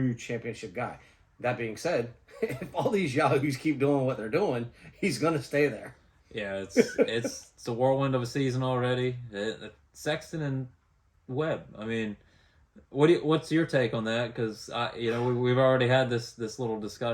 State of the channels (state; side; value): identical; both; correlation 1.00